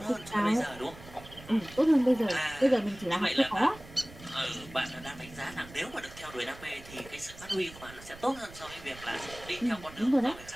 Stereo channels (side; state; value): right; noise; rumble, 18 dB below the sound